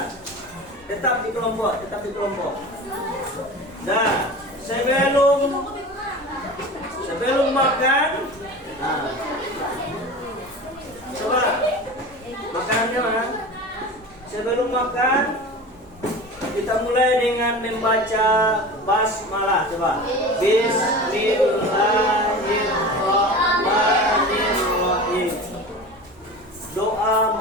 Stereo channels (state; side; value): normal; both; correlation 0.33